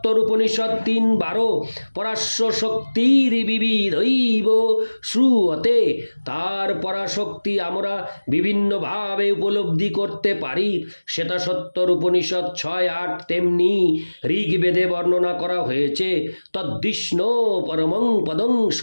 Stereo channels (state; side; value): inverted; both; correlation -1.00